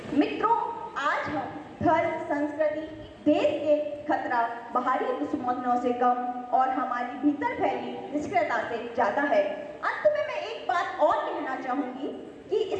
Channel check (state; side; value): identical; both; correlation 1.00